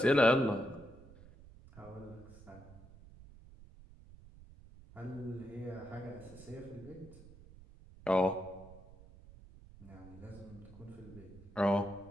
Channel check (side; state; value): right; noise; rumble, 19 dB below the sound